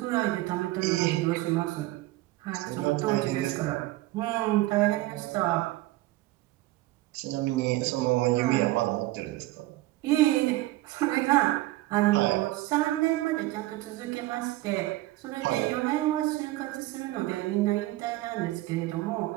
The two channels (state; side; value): quieter; left; 17.8 dB